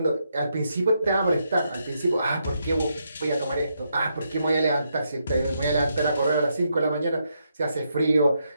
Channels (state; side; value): inverted; both; correlation -0.79